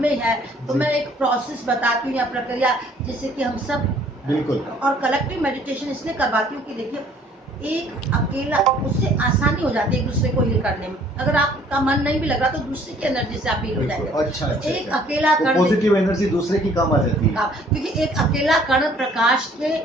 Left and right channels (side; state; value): both; normal; correlation 0.58